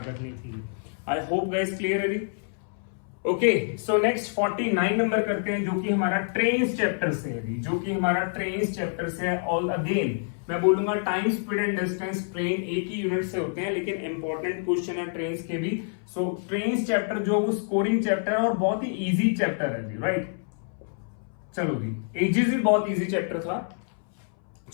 करनी थी। आई होप गाइस क्लियर है जी। ओके, सो नेक्स्ट 49 नंबर करते हैं, जो कि हमारा ट्रेन्स चैप्टर से है, जो कि हमारा ट्रेन्स चैप्टर से है। ऑल अगेन मैं बोलूंगा time, speed and distance, train एक ही यूनिट से होते हैं, लेकिन इंपॉर्टेंट क्वेश्चन है ट्रेन्स के भी। सो ट्रेन्स चैप्टर जो वो स्कोरिंग चैप्टर है और बहुत ही इजी चैप्टर है जी, राइट। चलो जी, एजेस भी बहुत इजी चैप्टर था।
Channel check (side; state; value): right; silent; 60 dB below the other